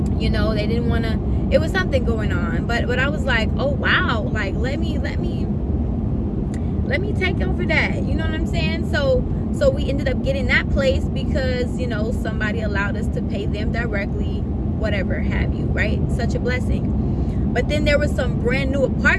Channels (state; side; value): identical; both; correlation 1.00